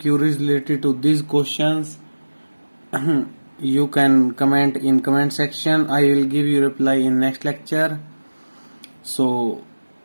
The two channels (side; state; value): both; inverted; correlation -1.00